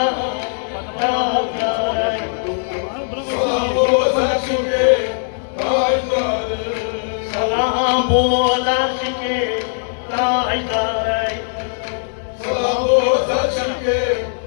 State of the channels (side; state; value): right; silent; digital silence